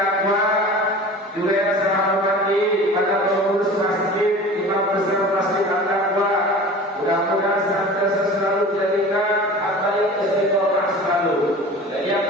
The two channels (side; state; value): both; normal; correlation 0.39